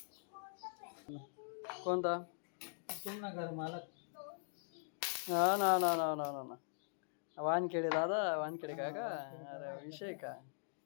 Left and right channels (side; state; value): right; silent; digital silence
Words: कोणता? तुम ना घर मालक. ना ना ना ना ना ना ना वानखेडे दादा, वानखेडे काका. अरे विषय का?